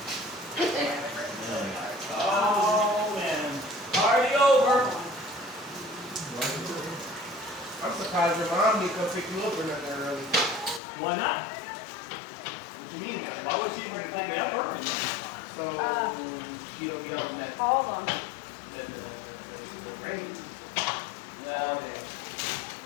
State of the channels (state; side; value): drops out; right; at 10.8 s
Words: Oh man. Party over. I'm surprised your mom didn't come pick you up or nothing early. Why not? What you mean? Why would she even take me up early? So she'll be out next. Hold on. Rain. Yeah. All day.